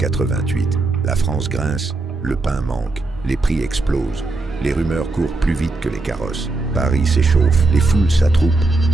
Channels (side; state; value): left; quieter; 3.3 dB